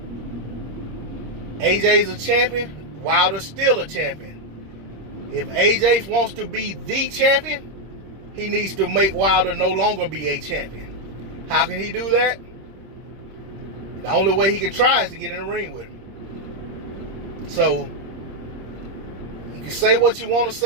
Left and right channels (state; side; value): late; left; 26 ms